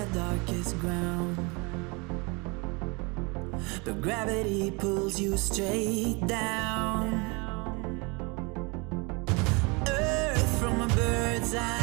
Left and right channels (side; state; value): left; quieter; 29.1 dB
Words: darkest ground, but gravity pulls you straight down. Earth from a bird's